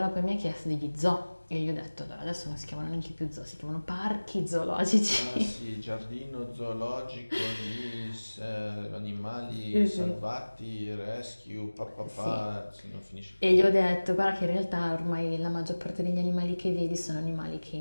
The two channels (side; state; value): both; inverted; correlation -1.00